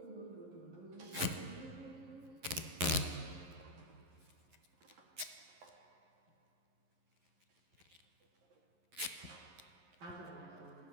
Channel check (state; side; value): late; left; 11 ms